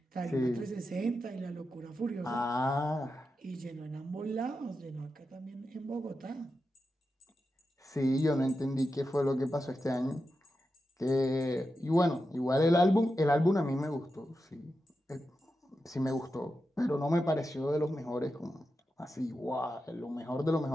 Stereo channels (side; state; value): both; normal; correlation 0.89